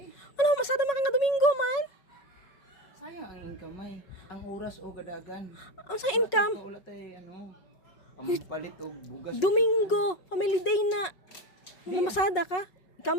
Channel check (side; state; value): right; late; 5.4 ms